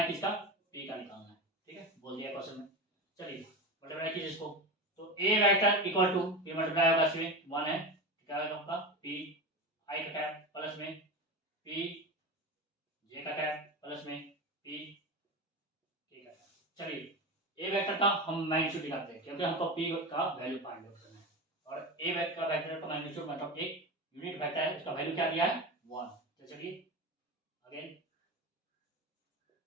किसका p का निकालना है, ठीक है बोल दिया क्वेश्चन में, चलिए मल्टीप्लाई कीजिए इसको, तो a वेक्टर इक्वल टू ये मल्टीप्लाई होगा इसमें 1 है क्या होगा आपका p i का कैप प्लस में p j का कैप प्लस में p k का कैप, चलिए ए वेक्टर का हम मैग्नीट्यूड निकालते हैं क्योंकि हमको पी का वैल्यू फाइंड आउट करना है। और ए वेक्टर का मैग्नीट्यूड मतलब एक यूनिट वेक्टर है, उसका वैल्यू क्या दिया है 1। तो चलिए अगेन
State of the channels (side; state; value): both; normal; correlation 0.24